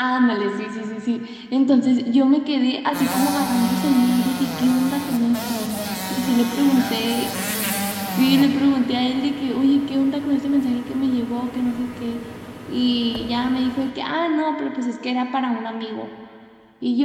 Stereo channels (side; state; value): both; identical; correlation 1.00